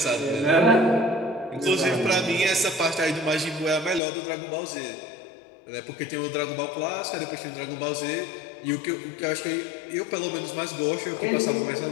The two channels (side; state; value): right; drops out; at 4.0 s